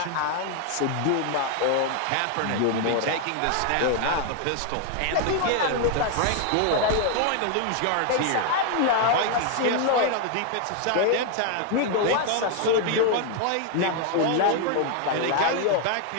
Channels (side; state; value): both; different; correlation 0.01